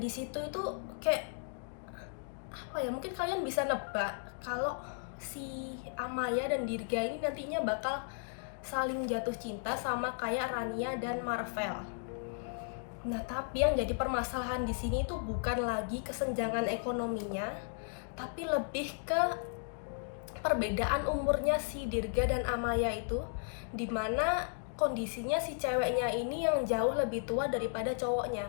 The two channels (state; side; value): silent; right; digital silence